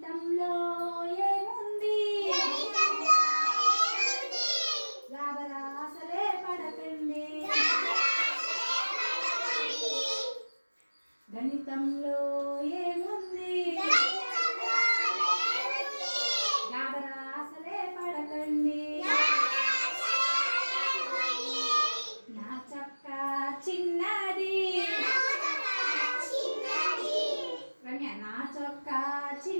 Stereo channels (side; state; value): both; inverted; correlation -1.00